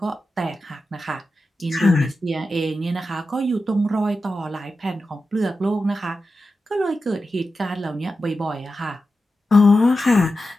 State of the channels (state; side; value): normal; both; correlation 0.91